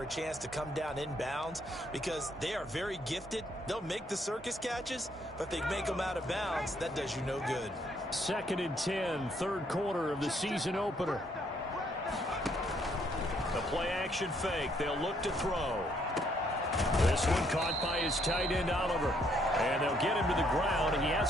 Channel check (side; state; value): both; normal; correlation 0.70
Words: a chance to come down inbounds because they are very gifted. They'll make the circus catches, but if they make them out of bounds, that does you no good. 2nd and 10, third quarter of the season opener. The play action fake. They'll look to throw. This one caught by his tight end, Oliver. And they'll get him to the ground. He